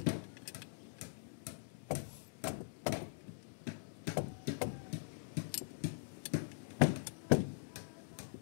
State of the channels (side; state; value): right; silent; digital silence